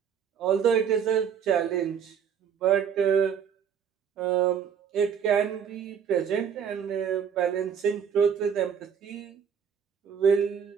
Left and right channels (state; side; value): quieter; left; 7.6 dB